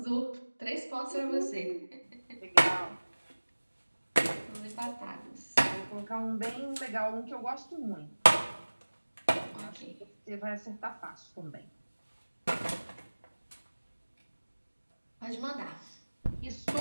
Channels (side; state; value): both; inverted; correlation -1.00